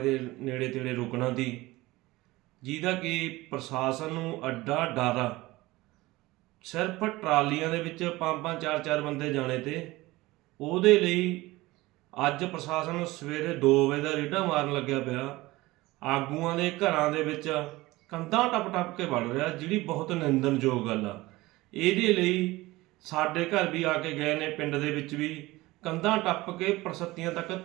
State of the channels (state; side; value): quieter; left; 19.7 dB